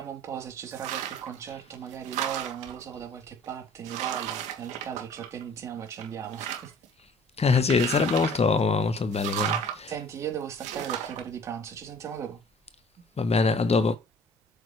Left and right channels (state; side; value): normal; both; correlation 0.51